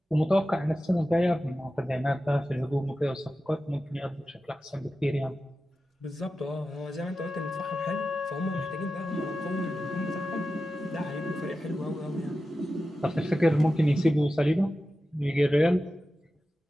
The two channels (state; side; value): normal; both; correlation 0.93